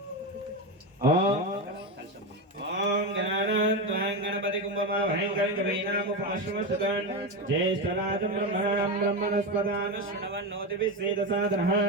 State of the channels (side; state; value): both; normal; correlation 0.15